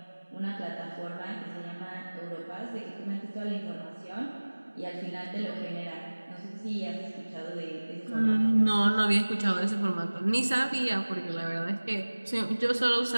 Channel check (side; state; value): both; inverted; correlation -1.00